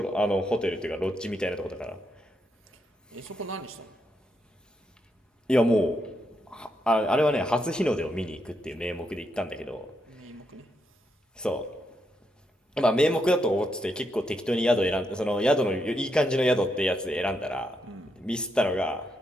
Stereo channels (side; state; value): both; normal; correlation 0.80